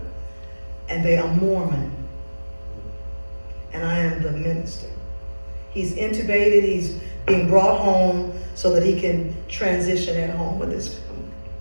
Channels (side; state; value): both; inverted; correlation -1.00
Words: and they are Mormon. And I am the minister. He's intubated, he's being brought home so that he can transition at home with his family.